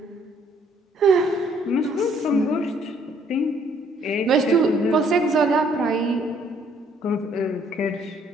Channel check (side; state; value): both; normal; correlation 0.64